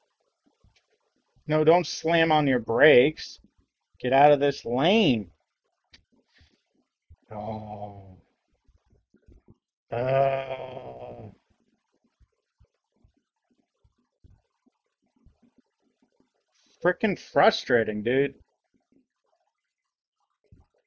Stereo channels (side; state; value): both; identical; correlation 1.00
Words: No, don't slam on your brakes. Get out of this lane. Oh. Freaking frustrating, dude.